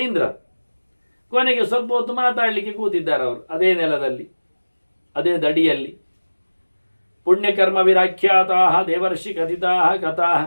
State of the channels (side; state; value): both; inverted; correlation -1.00